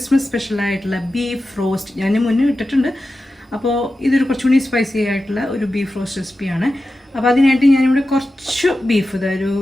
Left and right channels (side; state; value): both; normal; correlation 0.93